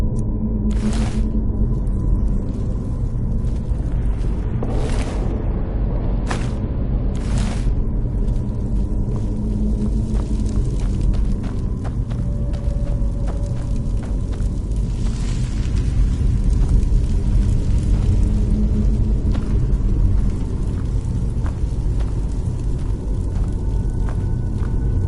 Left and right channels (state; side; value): identical; both; correlation 1.00